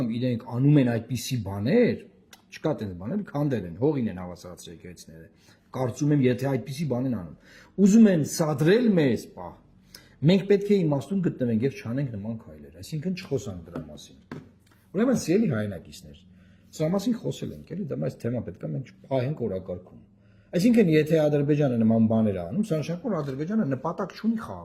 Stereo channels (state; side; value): identical; both; correlation 1.00